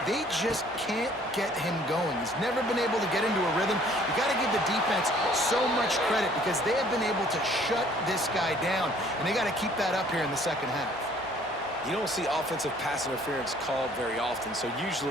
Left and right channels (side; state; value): both; normal; correlation 0.58